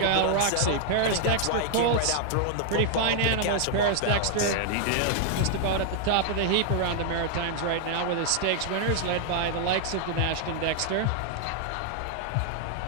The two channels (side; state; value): both; different; correlation 0.00